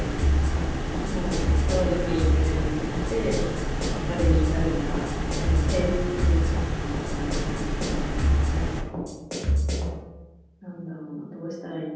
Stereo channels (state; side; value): identical; both; correlation 1.00